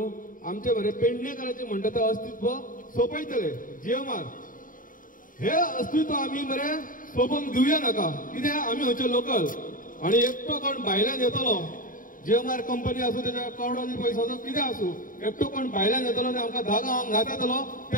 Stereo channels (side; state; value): right; late; 0.39 ms